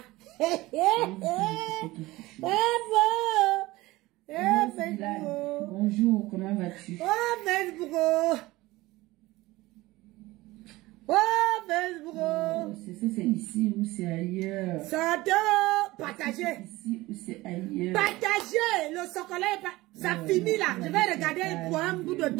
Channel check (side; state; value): left; quieter; 19.3 dB